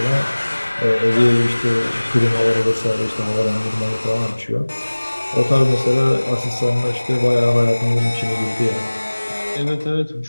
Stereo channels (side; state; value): both; inverted; correlation -1.00